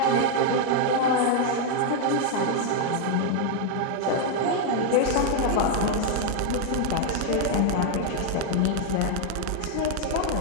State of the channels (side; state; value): both; different; correlation 0.00